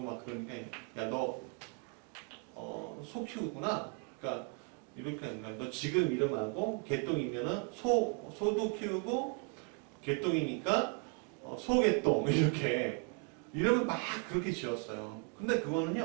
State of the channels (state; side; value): quieter; left; 35.8 dB